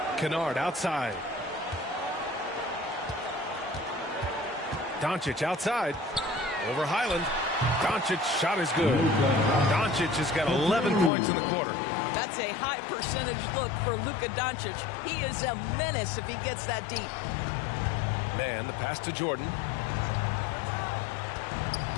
Kennard outside. Doncic outside. Over Highland. Doncic shot is good. Doncic has got 11 points in the quarter. That's a high percentage look for Luka Doncic. He is a menace if he gets that deep. Man, the pass to Jordan.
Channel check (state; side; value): drops out; right; at 11.1 s